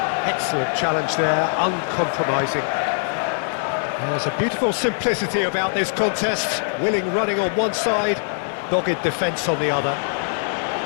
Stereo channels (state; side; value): silent; right; digital silence